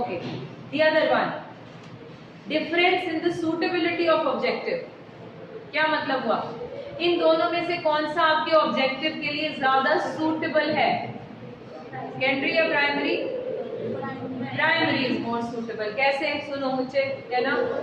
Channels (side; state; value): both; identical; correlation 1.00